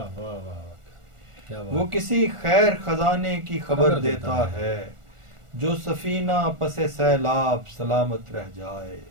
واہ واہ واہ، کیا وہ بات، کسی خیر خزانے کی خبر دیتا ہے، جو سفینہ پس سیلاب سلامت رہ جائے۔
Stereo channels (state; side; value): late; left; 1.4 ms